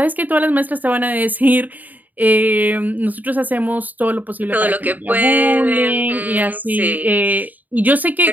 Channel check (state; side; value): late; left; 0.082 ms